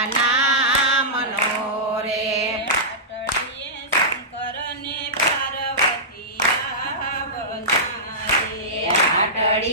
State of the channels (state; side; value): normal; both; correlation -0.16